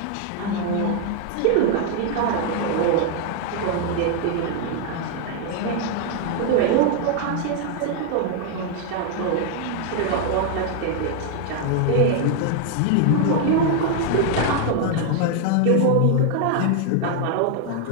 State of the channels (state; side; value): different; both; correlation 0.00